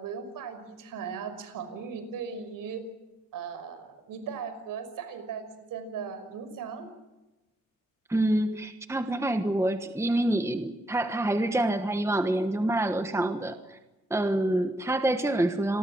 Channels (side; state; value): both; normal; correlation 0.78